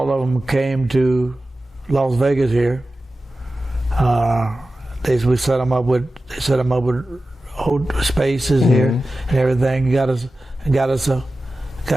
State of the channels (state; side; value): normal; both; correlation 0.94